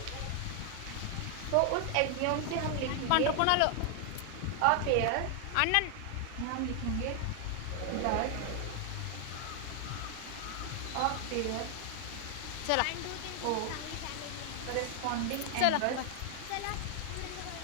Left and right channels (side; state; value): both; different; correlation 0.00